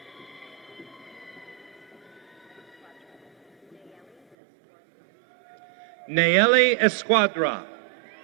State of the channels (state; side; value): drops out; left; at 4.4 s